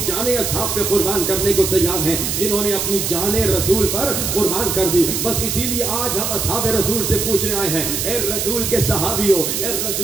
جانیں اصحاب پہ قربان کرنے کو تیار ہیں جنہوں نے اپنی جانیں رسول پر قربان کر دی. بس اسی لیے آج ہم اصحاب رسول سے پوچھنے آئے ہیں, اے رسول کے صحابیوں, اے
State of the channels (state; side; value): noise; right; hiss, 1 dB below the sound